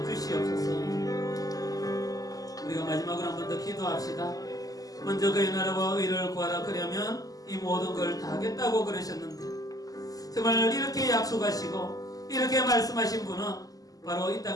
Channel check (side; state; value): right; late; 0.17 ms